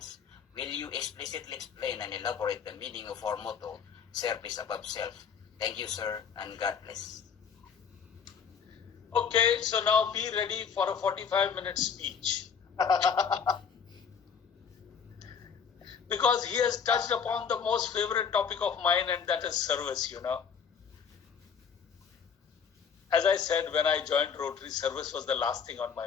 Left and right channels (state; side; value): quieter; right; 6.8 dB